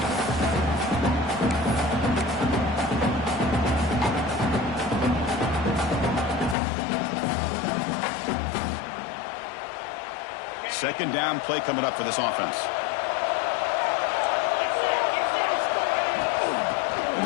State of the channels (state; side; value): drops out; right; at 6.6 s